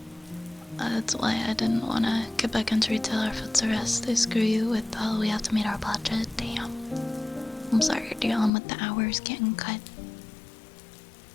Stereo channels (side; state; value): right; drops out; at 8.5 s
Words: That's why I didn't want to get back into retail or food service. They screw you with we have to meet our budget. Damn. I'm sorry you're dealing with the hours getting cut.